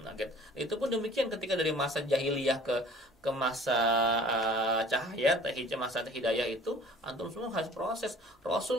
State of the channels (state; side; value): normal; both; correlation 0.50